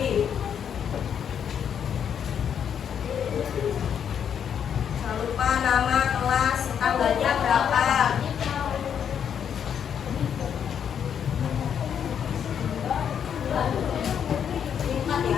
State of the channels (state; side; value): quieter; right; 8.2 dB